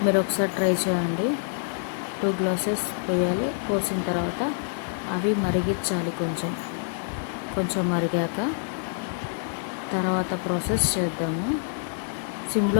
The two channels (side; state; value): right; silent; digital silence